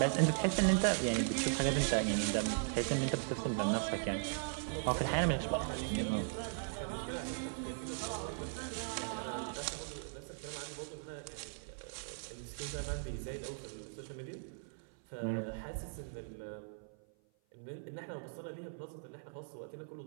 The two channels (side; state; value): left; silent; 52 dB below the other